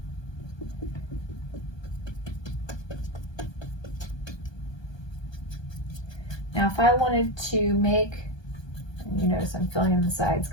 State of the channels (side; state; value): right; late; 1.2 ms